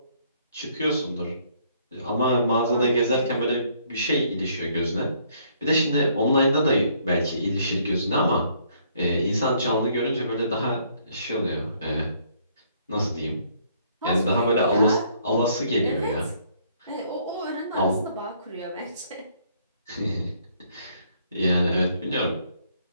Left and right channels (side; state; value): both; inverted; correlation -0.66